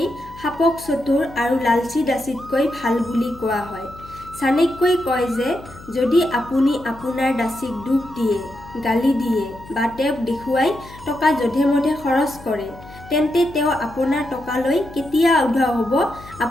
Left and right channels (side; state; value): left; noise; hum, 19 dB below the sound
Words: সাপক চতুৰ আৰু লালচী দাসীতকৈ ভাল বুলি কোৱা হয়। চাণক্যই কয় যে যদি আপুনি আপোনাৰ দাসীক দুখ দিয়ে, গালি দিয়ে বা তেওঁক দেখুৱাই টকা যধে-মধে খৰচ কৰে, তেন্তে তেওঁ আপোনাৰ টকালৈ কেতিয়া উধাও হ'ব